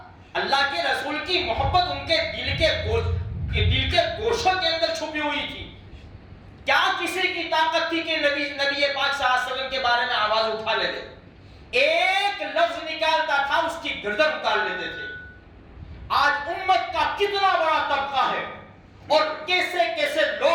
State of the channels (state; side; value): identical; both; correlation 1.00